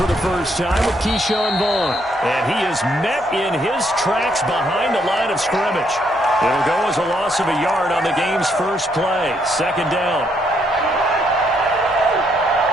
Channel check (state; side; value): normal; both; correlation 0.73